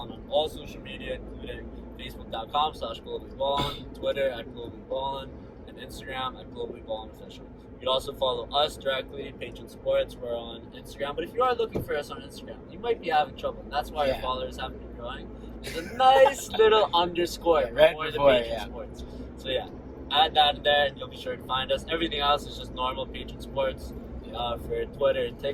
on all social media, including Facebook.com/globallyballin, Twitter @globallyballin, and Instagram @globallyballinofficial. You can also follow us directly, Patron Sports. We're on Instagram. But if you are looking for us on Instagram, you might be having trouble. And that's why your followers haven't been growing. There's a nice little underscore right before the before, Patron yeah. Sports. So yeah, add that in there and you'll be sure to find us. Everything else is just normal Patron Sports for Twitter,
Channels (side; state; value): both; identical; correlation 1.00